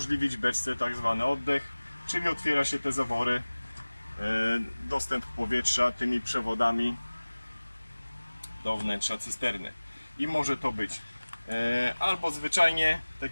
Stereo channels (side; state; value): both; inverted; correlation -1.00